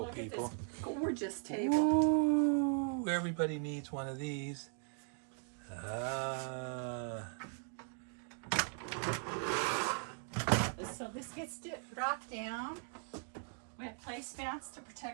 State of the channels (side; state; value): left; silent; 52 dB below the other